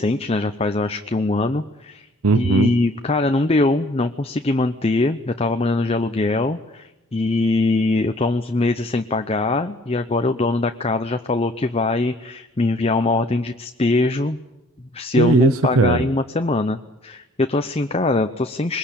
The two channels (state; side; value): normal; both; correlation 0.57